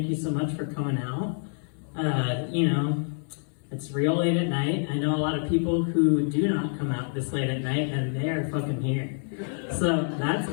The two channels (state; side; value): silent; right; 60 dB below the other